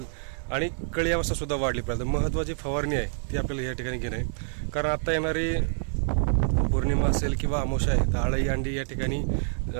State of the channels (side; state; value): left; silent; 60 dB below the other